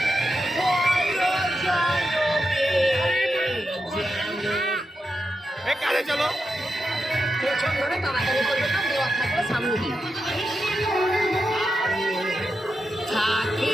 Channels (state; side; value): normal; both; correlation 0.87